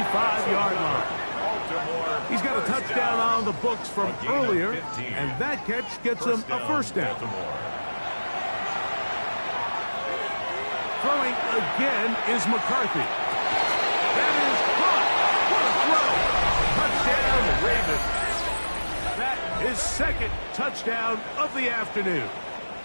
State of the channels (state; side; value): inverted; both; correlation -1.00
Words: line. He's got a touchdown on the books from earlier, and that catch gets him a 1st down. Throwing again is McCarthy. That is caught. What a throw. Touchdown, Ravens. That is 2nd touchdown of the afternoon.